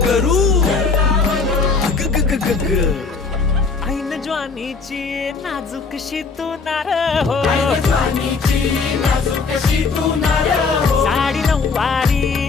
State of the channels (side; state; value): right; quieter; 4.6 dB